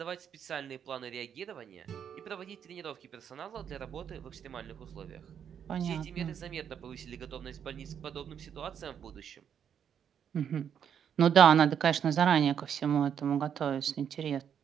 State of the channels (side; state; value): left; quieter; 8.3 dB